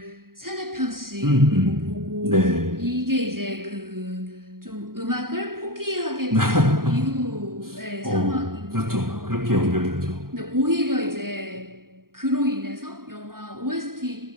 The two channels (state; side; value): late; left; 0.92 ms